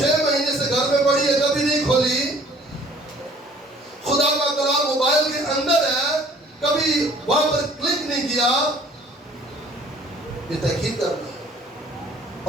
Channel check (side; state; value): both; normal; correlation 0.54